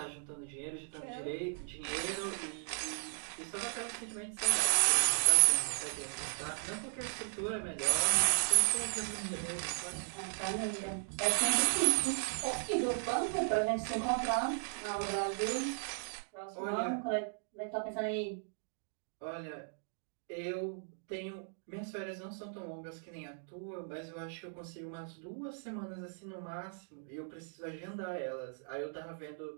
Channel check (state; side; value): silent; left; digital silence